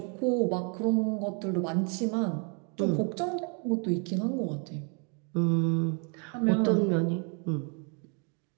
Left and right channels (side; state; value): left; quieter; 37.9 dB